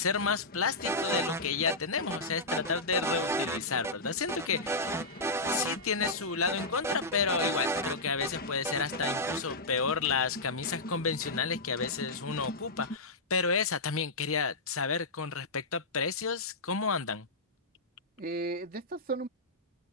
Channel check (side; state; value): right; quieter; 3.1 dB